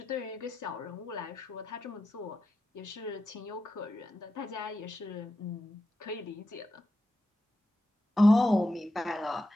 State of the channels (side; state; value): both; normal; correlation 0.89